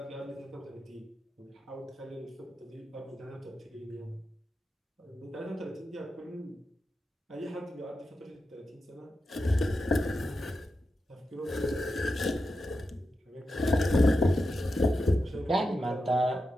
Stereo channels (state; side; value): normal; both; correlation 0.89